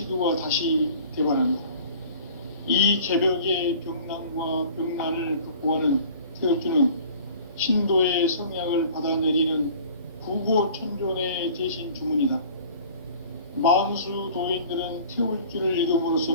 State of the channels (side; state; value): both; inverted; correlation -0.47